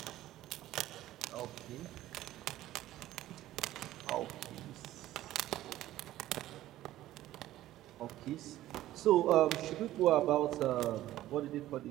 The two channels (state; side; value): quieter; left; 14.5 dB